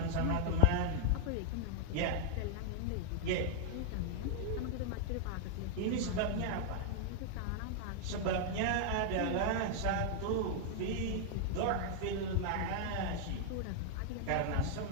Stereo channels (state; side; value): different; both; correlation -0.01